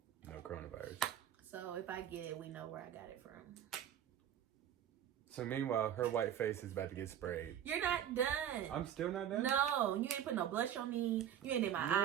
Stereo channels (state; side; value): quieter; left; 10.1 dB